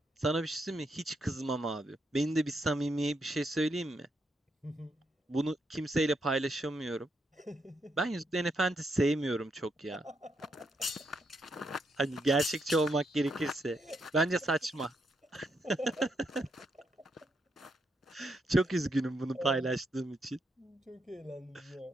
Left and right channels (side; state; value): both; normal; correlation 0.79